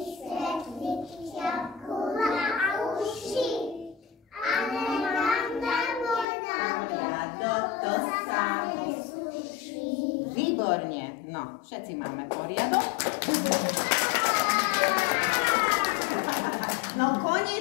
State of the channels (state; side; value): drops out; right; at 6.2 s